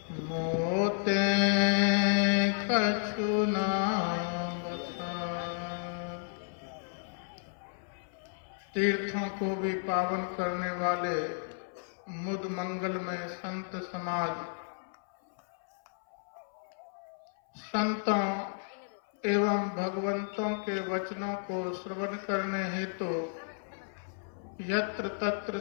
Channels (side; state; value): right; silent; 56 dB below the other